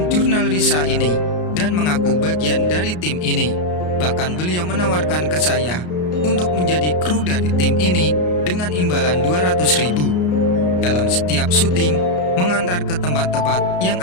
jurnal Risa ini dan mengaku bagian dari tim ini. Bahkan beliau menawarkan ke saya untuk menjadi kru dari tim ini dengan imbalan 200.000 dalam setiap syuting, mengantar ke tempat-tempat yang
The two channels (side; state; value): right; late; 33 ms